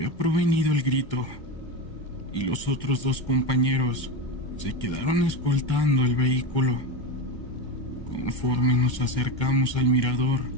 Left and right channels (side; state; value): right; late; 1.3 ms